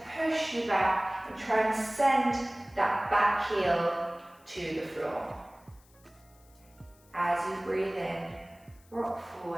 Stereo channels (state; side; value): noise; left; hiss, 29 dB below the sound